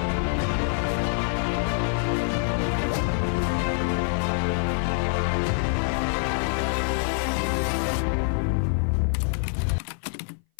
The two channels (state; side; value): silent; right; 58 dB below the other